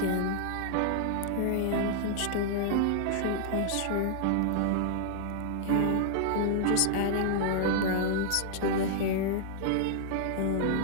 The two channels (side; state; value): both; different; correlation -0.01